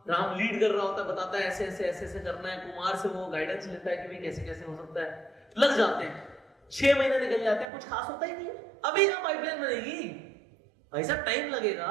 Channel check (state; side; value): drops out; left; at 7.7 s